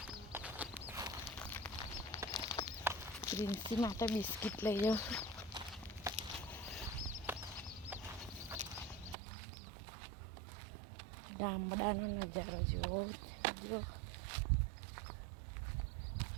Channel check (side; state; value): left; drops out; at 9.2 s